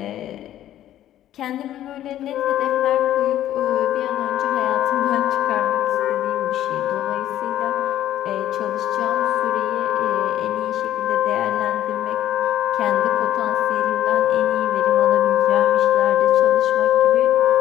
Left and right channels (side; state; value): right; quieter; 12.4 dB